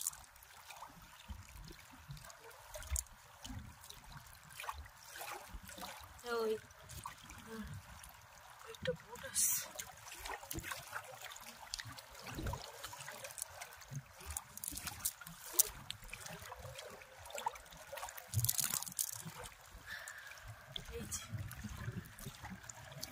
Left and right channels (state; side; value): identical; both; correlation 1.00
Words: ওই একটা বোট আসছে।